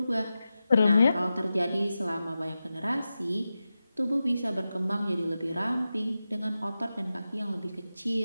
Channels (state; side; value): inverted; both; correlation -0.93